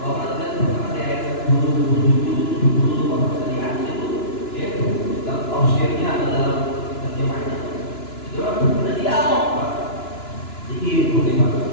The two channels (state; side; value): late; right; 2.9 ms